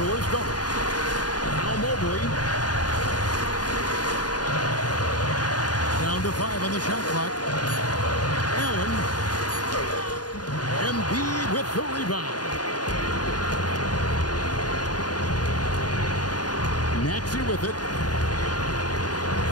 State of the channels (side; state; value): right; late; 0.69 ms